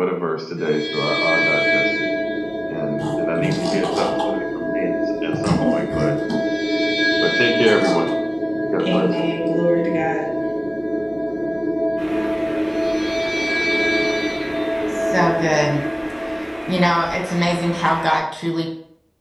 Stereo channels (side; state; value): both; identical; correlation 1.00